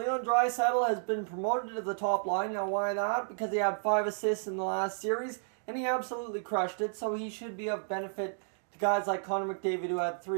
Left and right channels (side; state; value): left; silent; digital silence